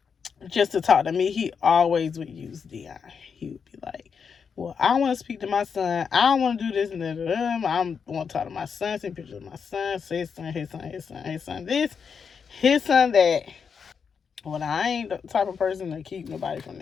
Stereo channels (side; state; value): right; quieter; 6.3 dB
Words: just to talk to me, he always would use Dion. He would be like, "Well, I want to speak to my son. I don't want to do this and that. I want to talk to my son. Send pictures of my son. Say his son this, his son that." Well, I ain't the type of person to keep nobody from